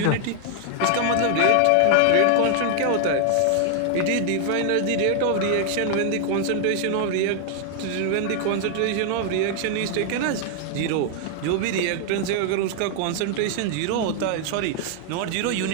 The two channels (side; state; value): both; different; correlation 0.00